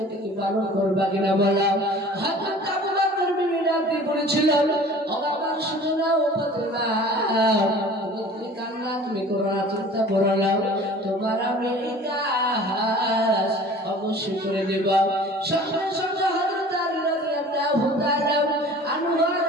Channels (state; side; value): normal; both; correlation 0.45